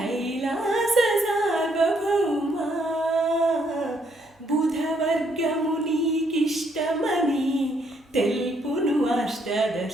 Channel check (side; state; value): both; normal; correlation 0.71